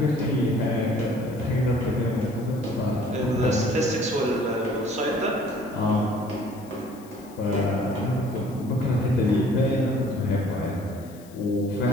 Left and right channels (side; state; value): left; noise; hiss, 24 dB below the sound